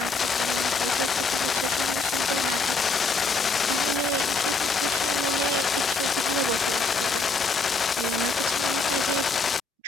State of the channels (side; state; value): right; quieter; 3.9 dB